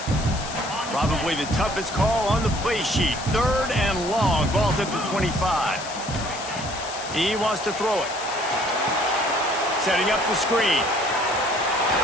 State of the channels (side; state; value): left; noise; hiss, 11 dB below the sound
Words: Probably the toughest call on the play sheet. 3rd and long. Ball's at the 25. He wants to throw it. Setting up the screen.